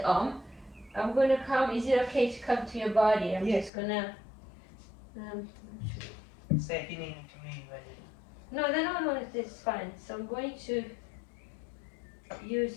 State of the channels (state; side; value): drops out; right; at 3.7 s